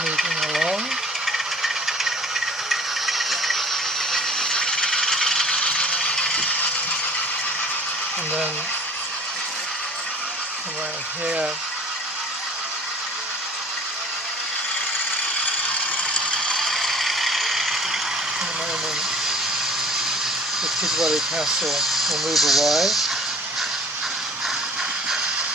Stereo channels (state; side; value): normal; both; correlation 0.49